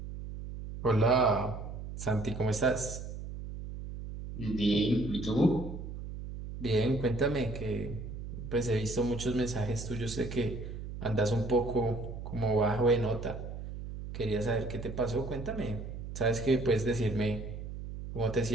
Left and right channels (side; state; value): right; noise; hum, 9 dB below the sound